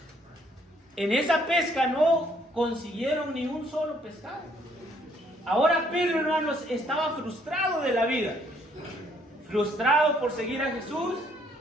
En esa pesca no consiguieron ni un solo pescado. Ahora Pedro, hermanos, estaba frustrado de la vida. Frustrado por seguir a Jesús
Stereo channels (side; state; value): both; normal; correlation 0.67